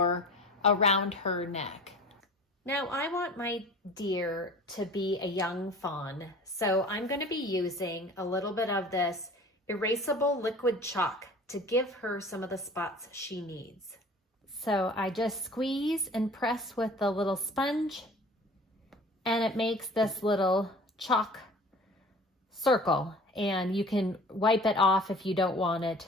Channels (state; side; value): normal; both; correlation 0.44